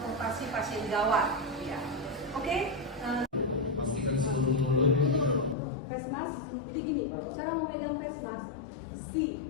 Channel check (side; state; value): right; drops out; at 5.6 s